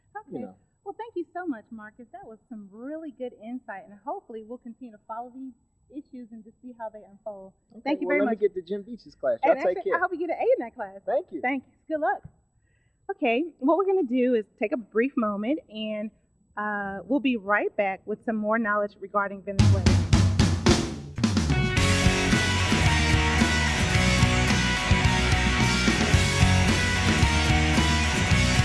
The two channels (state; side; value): identical; both; correlation 1.00